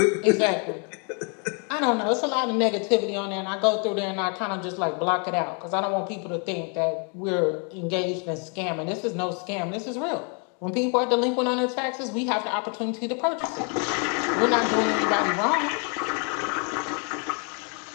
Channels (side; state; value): right; quieter; 37.8 dB